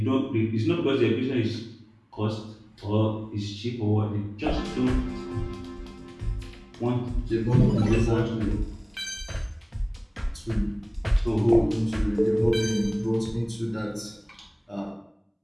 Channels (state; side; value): identical; both; correlation 1.00